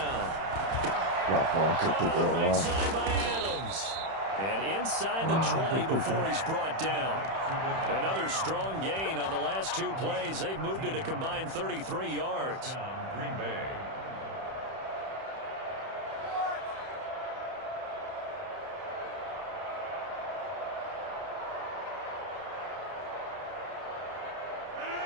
Caught on the right side by Adams. And inside the 20 before he's brought down. Another strong gain on the last 2 plays. They've moved it a combined 33 yards. Green Bay.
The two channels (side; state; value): left; late; 31 ms